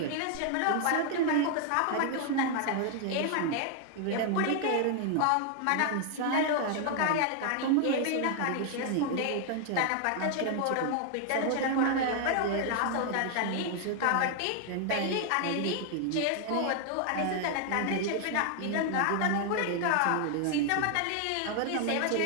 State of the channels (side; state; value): both; different; correlation 0.00